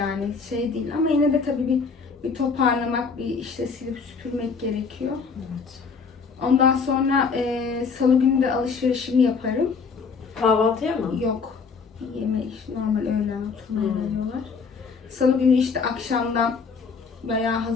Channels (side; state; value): right; quieter; 5.2 dB